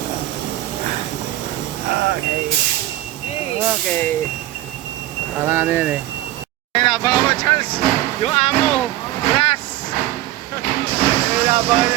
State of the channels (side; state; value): left; quieter; 15.5 dB